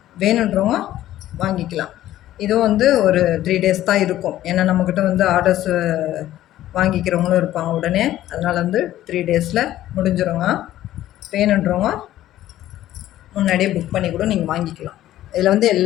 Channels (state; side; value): quieter; right; 13.6 dB